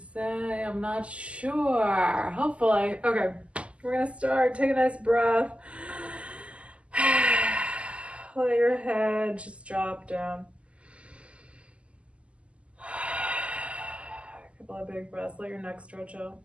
I'm not sure. Hopefully. Okay, we're gonna start. Take a nice breath. Let your head just drop down. A couple of big breaths. Let your neck stretch out.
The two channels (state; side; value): late; left; 0.058 ms